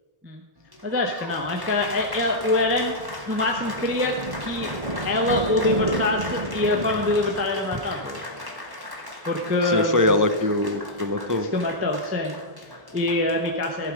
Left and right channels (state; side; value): late; left; 1.1 ms